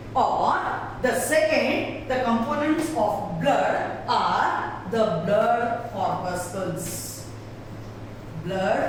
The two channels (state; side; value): identical; both; correlation 1.00